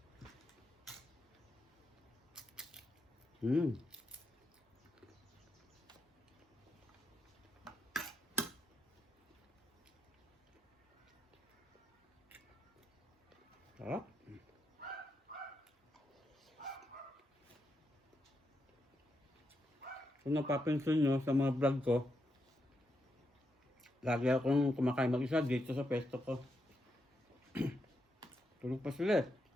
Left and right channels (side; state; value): both; normal; correlation 0.82